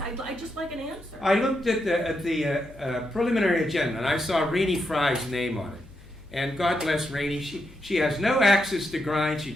I'd just like an answer. I looked at the preliminary agenda and I saw Renee Fry's name on it. And God bless Renee, she has no access to grind. She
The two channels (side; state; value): left; noise; hum, 22 dB below the sound